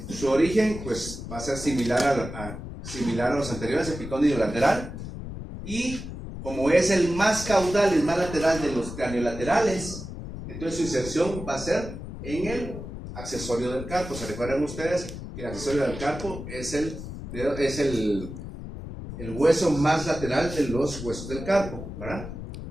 Su origen pues va a ser similar a los anteriores, epicóndilo lateral, y como es el más caudal, el más lateral de los craneolaterales, entonces su inserción va a ser en el accesorio del carpo. ¿Se recuerdan ustedes que el accesorio del carpo es el hueso más lateral de los huesos del carpo, ¿verdad?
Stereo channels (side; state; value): left; noise; rumble, 9 dB below the sound